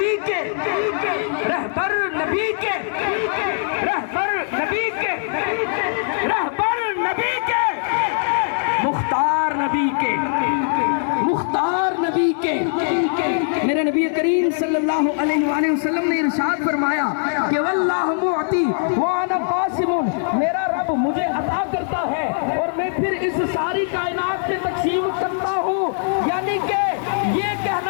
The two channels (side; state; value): right; silent; digital silence